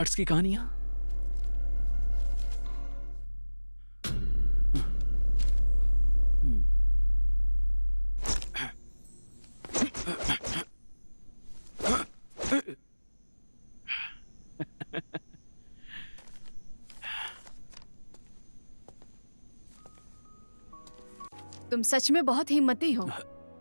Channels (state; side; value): inverted; both; correlation -1.00